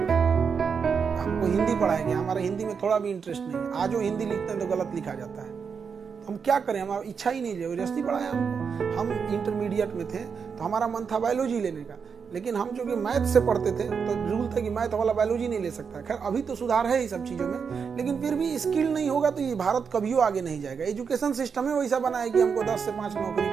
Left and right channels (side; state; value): left; quieter; 6.1 dB